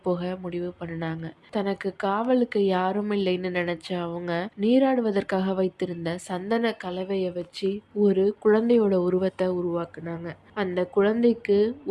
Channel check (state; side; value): identical; both; correlation 1.00